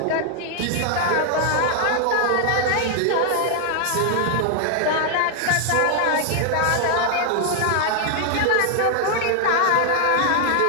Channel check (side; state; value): both; different; correlation 0.00